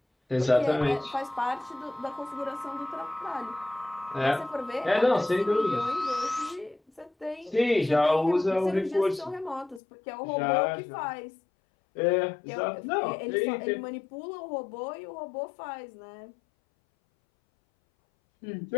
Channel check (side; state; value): right; drops out; at 9.8 s